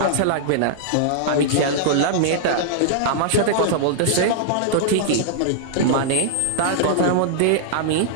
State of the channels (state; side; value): different; both; correlation -0.01